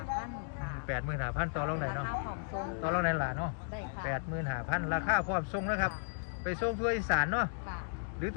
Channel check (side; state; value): right; silent; digital silence